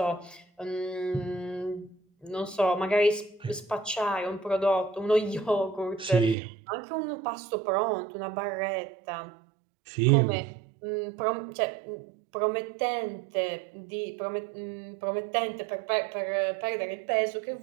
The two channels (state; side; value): drops out; left; at 6.4 s